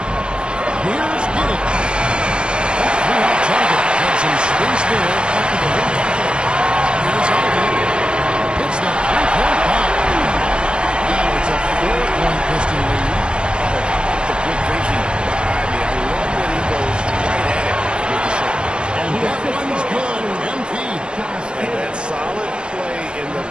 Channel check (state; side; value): late; left; 0.053 ms